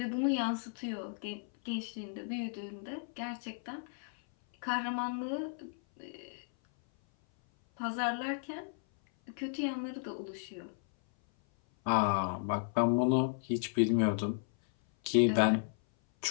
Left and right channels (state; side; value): silent; right; 55 dB below the other